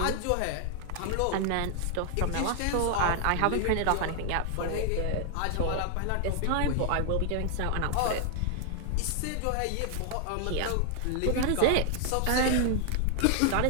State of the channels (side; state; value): both; different; correlation 0.00